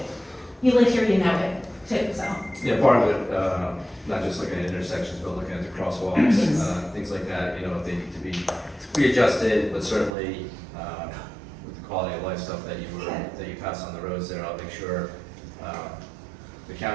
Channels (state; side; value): drops out; left; at 10.1 s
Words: You live here, you know it, too, so. Yeah, part of it, not just looking at intersections, but looking at the crosswalks, things like that, you know, if they need to be readjusted, but certainly, with the quality of life stuff that you pass on the roads there, I'll make sure, the